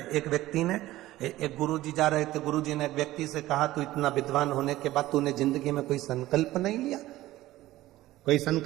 एक व्यक्ति ने, एक गुरुजी जा रहे थे, गुरुजी ने एक व्यक्ति से कहा, तू इतना विद्वान होने के बाद तूने जिंदगी में कोई संकल्प नहीं लिया, कोई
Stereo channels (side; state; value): left; quieter; 16.2 dB